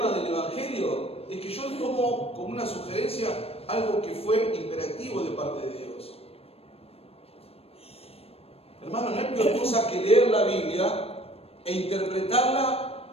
del Evangelio? Es que yo tomo como una sugerencia algo que fue imperativo de parte de Dios. Hermano, no hay peor cosa que leer la Biblia e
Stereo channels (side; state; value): right; late; 0.28 ms